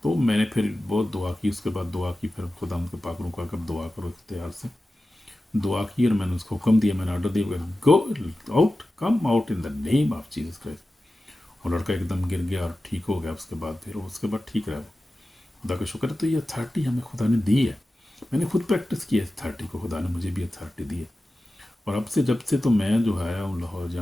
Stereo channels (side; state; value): both; normal; correlation 0.94